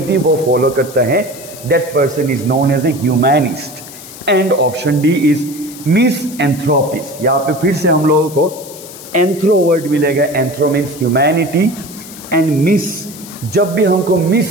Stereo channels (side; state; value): left; noise; hiss, 16 dB below the sound